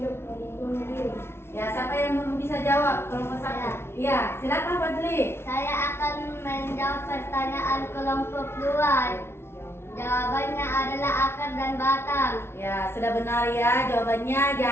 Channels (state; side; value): late; right; 0.12 ms